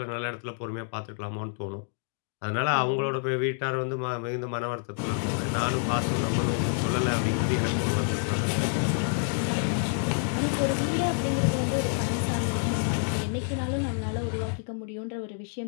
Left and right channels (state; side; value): silent; right; 59 dB below the other